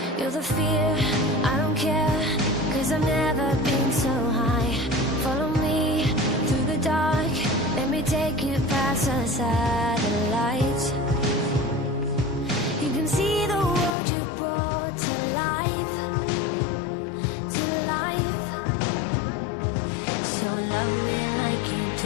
You're the fear, I don't care, 'cause I've never been so high. Follow me through the dark, let me take you past the satellite.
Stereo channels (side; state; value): right; drops out; at 14.0 s